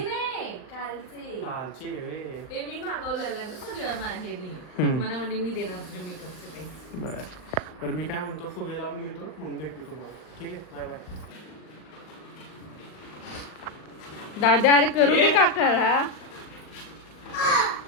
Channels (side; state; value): right; late; 39 ms